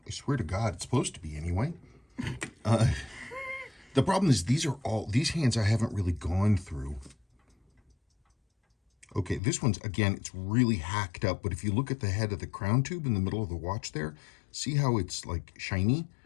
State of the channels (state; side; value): drops out; right; at 9.4 s